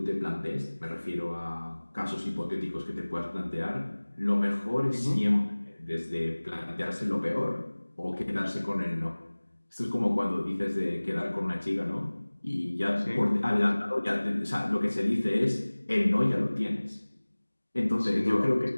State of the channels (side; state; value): both; inverted; correlation -1.00